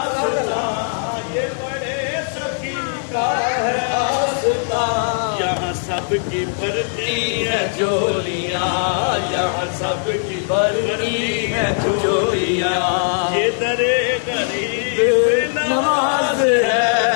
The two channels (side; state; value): right; silent; digital silence